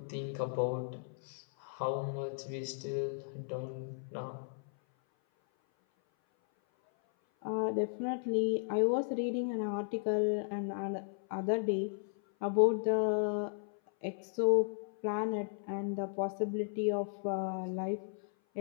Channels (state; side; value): silent; right; 54 dB below the other